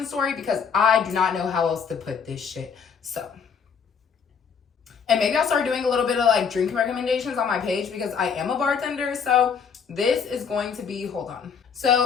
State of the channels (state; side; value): quieter; right; 6.4 dB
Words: story, because I do not know how else to put this shit. So, and maybe I'll start doing a little bit of like drink recommendations on my page, because I am a bartender. So this is going to be, hold on.